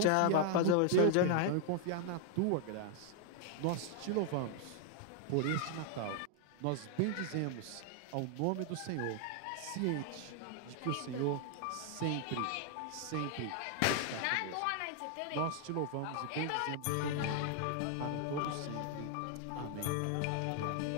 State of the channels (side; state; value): both; different; correlation 0.00